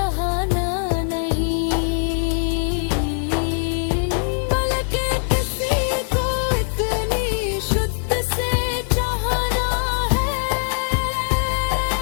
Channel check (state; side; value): silent; right; 65 dB below the other